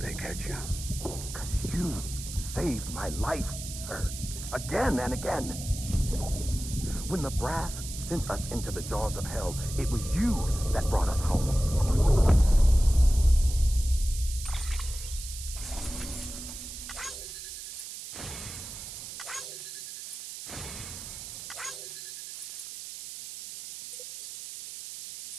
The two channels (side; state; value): right; noise; hiss, 10 dB below the sound